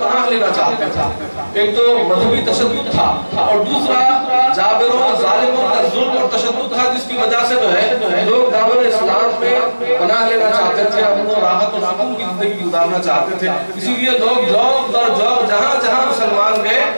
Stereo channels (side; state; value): both; inverted; correlation -1.00